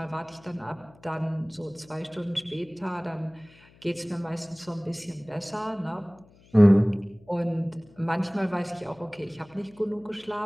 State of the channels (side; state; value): left; noise; hum, 27 dB below the sound